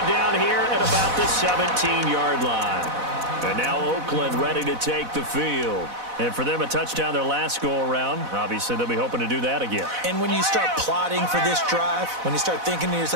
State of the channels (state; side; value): late; left; 4.0 ms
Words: down here at about the 17-yard line. And now Oakland ready to take the field. And for them, a touchdown their last go-around. Obviously, they'll be hoping to do that again. And when you start plotting for this drive, when you start thinking to